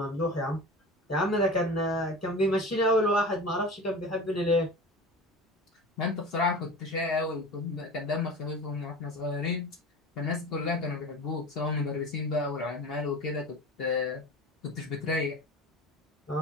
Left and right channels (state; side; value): normal; both; correlation 0.33